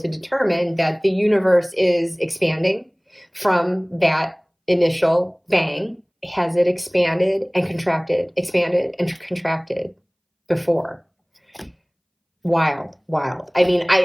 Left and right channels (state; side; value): identical; both; correlation 1.00